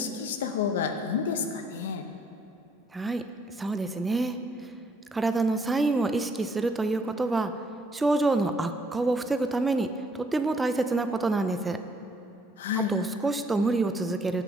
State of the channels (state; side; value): normal; both; correlation 0.66